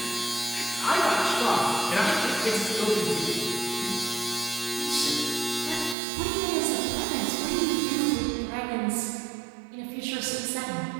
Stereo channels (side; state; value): left; drops out; at 6.0 s